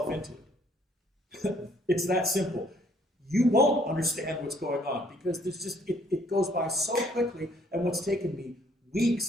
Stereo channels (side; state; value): both; normal; correlation 0.63